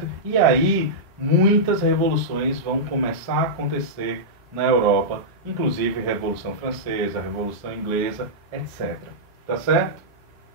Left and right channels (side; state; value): both; normal; correlation -0.12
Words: E aí, muitas revoluções vão começar a acontecer na Europa, inclusive a Revolução Francesa, a Revolução Inglesa, etc. Tá certo?